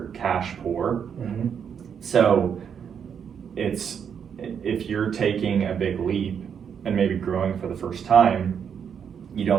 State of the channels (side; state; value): left; quieter; 7.6 dB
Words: cash poor. So if you're taking a big leap and maybe growing for the first time, you